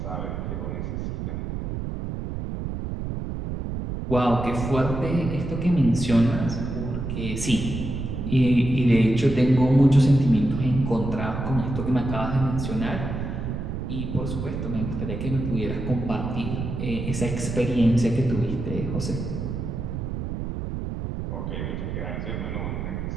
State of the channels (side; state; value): right; noise; rumble, 4 dB below the sound